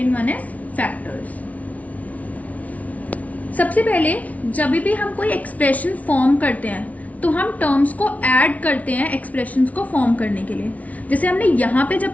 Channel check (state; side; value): late; right; 0.069 ms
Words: one is factors. सबसे पहले जब भी हम कोई एक्सप्रेशन फॉर्म करते हैं तो हम टर्म्स को ऐड करते हैं एक्सप्रेशंस को फॉर्म करने के लिए। जैसे हमने यहाँ पे जब